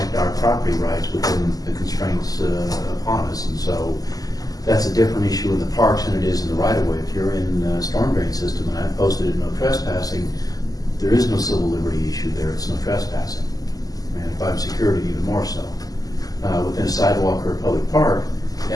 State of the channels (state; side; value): late; right; 0.17 ms